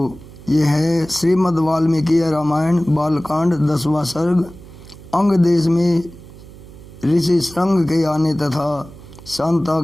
ये है श्रीमद् वाल्मीकि रामायण बालकांड 10वां सर्ग। अंग देश में ऋषि श्रृंग के आने तथा शांता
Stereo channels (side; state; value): right; noise; hum, 18 dB below the sound